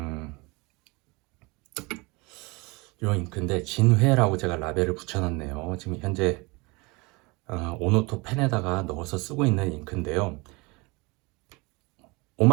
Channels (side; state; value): left; quieter; 26.1 dB